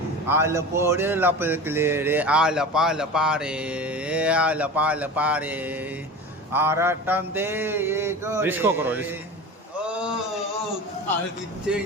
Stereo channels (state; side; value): normal; both; correlation 0.32